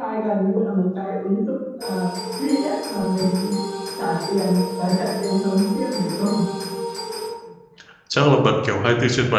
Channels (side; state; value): both; identical; correlation 1.00